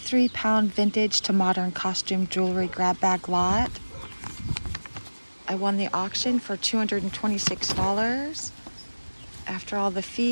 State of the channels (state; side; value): inverted; both; correlation -1.00